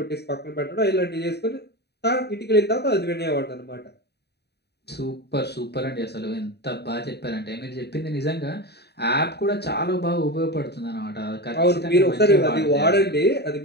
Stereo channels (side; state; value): right; late; 0.48 ms